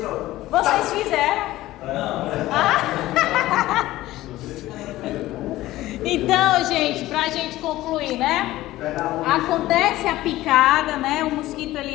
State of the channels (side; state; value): right; quieter; 16.3 dB